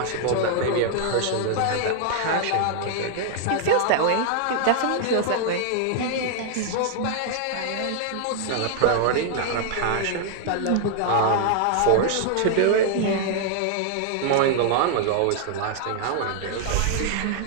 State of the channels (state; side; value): different; both; correlation 0.00